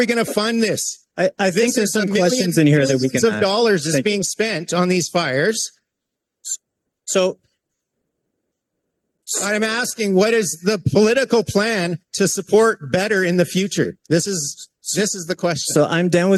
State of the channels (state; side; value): identical; both; correlation 1.00